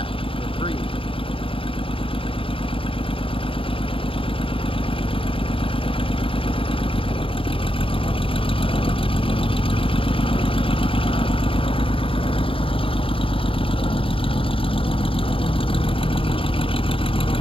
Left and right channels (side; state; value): right; late; 0.26 ms